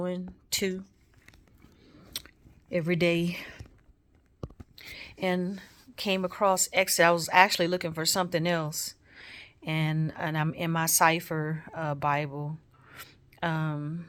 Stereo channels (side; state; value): both; identical; correlation 1.00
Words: too, every day. And came across Exodus. I was actually looking for something else, and I'm in my cipher Bible, um,